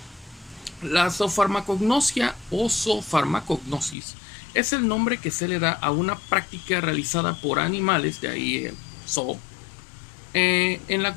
La zoofarmacognosia o zoofarmacognosis es el nombre que se le da a una práctica realizada por animales, de ahí el zoo, en la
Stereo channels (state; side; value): drops out; right; at 4.0 s